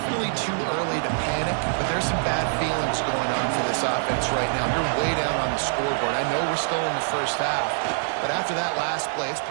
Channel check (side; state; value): left; silent; digital silence